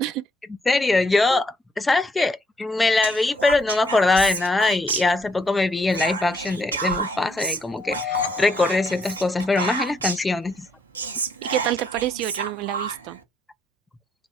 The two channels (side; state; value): both; normal; correlation 0.72